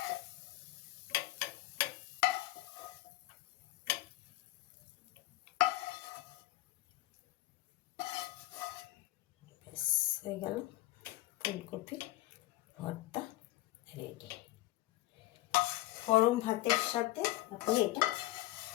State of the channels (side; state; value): right; quieter; 17.6 dB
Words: ব্যাস হয়ে গেল, ফুলকপি ভর্তা রেডি। গরম ভাতের সাথে আপনি এটা